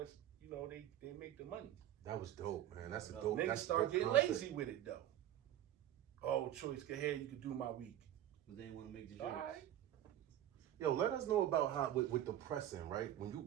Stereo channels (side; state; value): left; quieter; 12.1 dB